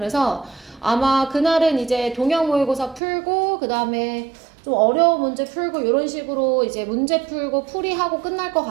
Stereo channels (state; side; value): drops out; left; at 3.0 s